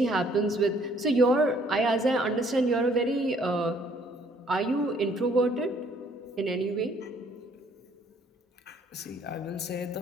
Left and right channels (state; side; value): normal; both; correlation 0.62